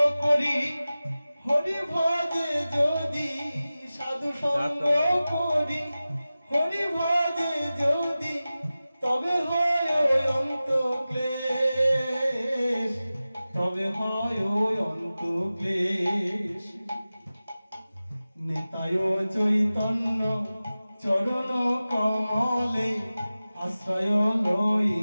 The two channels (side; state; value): both; inverted; correlation -0.96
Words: করি হরি ভজে যদি সাধু সঙ্গ করি হরি ভজে যদি তবে হয় ওই অন্ত ক্লেশ তবে হয় ওই অন্ত ক্লেশ নিতায় চৈতন্য চরণ কমলে আশ্রয়